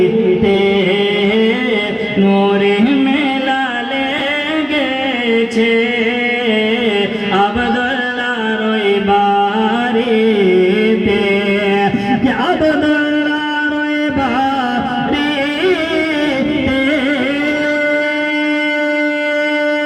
নূরি মেলা লেগেছে আব্দুল্লাহর ওই বাড়িতে আব্দুল্লাহর ওই বাড়িতে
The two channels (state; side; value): identical; both; correlation 1.00